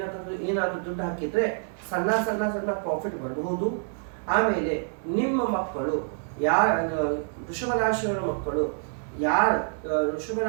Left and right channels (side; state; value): left; silent; 60 dB below the other